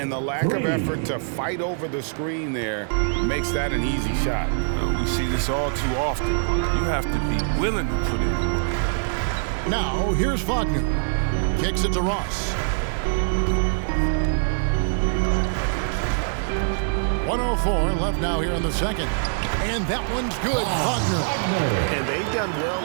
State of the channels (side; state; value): left; silent; digital silence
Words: the lack of effort to fight over the screen there makes that an easy shot. We see this all too often. You have to be willing to put in the work. Now, here's Wagner. Kicks it to Ross. 104 left now here in the second. And that one's good. Wagner. And they've done